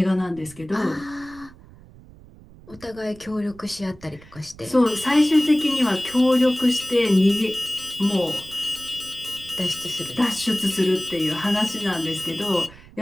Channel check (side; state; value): right; noise; rumble, 22 dB below the sound